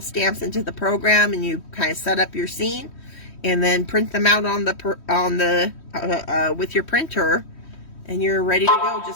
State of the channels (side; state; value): right; late; 3.1 ms